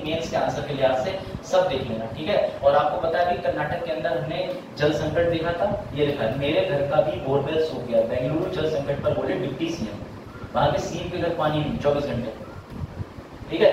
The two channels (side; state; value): both; identical; correlation 1.00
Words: मेंस के आंसर के लिहाज से, सब देख लेना। ठीक है, और आपको पता है कि कर्नाटक के अंदर हमने जल संकट देखा था, ये लिखा है, मेरे घर का भी बोरवेल सूख गया, बेंगलुरु जल संकट पर बोले डिप्टी सीएम, वहां के सीएम के घर पानी नहीं 24 घंटे। ठीक